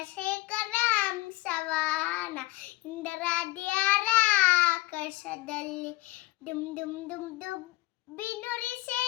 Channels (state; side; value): quieter; right; 19.8 dB